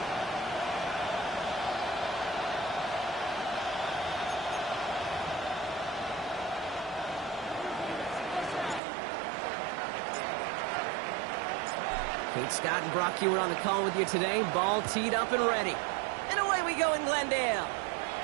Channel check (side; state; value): left; drops out; at 8.8 s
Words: Kate Scott and Brock Hewitt on the call with you today. Ball teed up and ready. And away we go in Glendale.